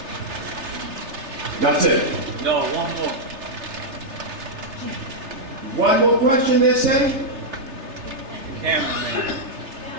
That's it. No, one more. One more question, they say? Cameraman.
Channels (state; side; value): late; left; 3.3 ms